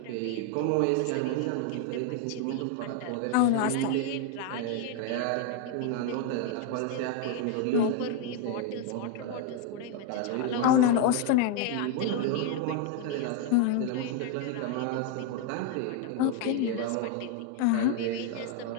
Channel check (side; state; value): both; different; correlation 0.01